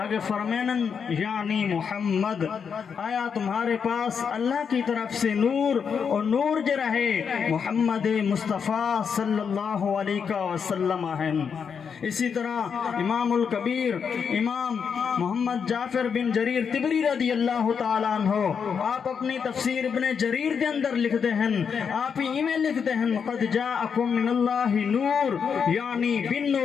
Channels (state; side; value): quieter; right; 6.6 dB